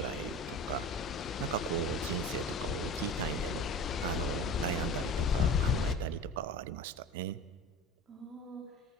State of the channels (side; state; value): both; normal; correlation 0.36